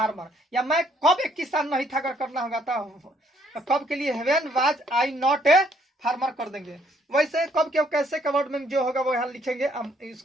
या मैं कब एक किसान नहीं था अगर करना होगा तो कब के लिए when was I not a farmer कर देंगे। वैसे कब क्यों कैसे का वर्ड में जो होगा वो यहाँ लिखेंगे,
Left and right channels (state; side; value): normal; both; correlation 0.67